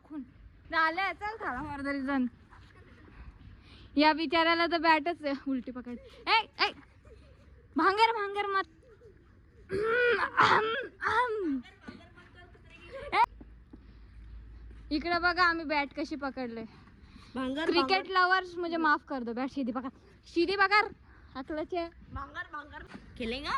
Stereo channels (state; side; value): identical; both; correlation 1.00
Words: झालं. चल थाळा मार रिदान. या बिचाऱ्याला तर बॅटच आहे. उलटी पकड. ए ए भांगर भांगर मत. इकडे बघा आम्ही बॅट कशी पकडले. क्रिकेट लवर्स मुझे माफ कर दो. बैठ सीधी पकड़. सीधी पकड़. अकलचे भांगर भांगर खेलेगा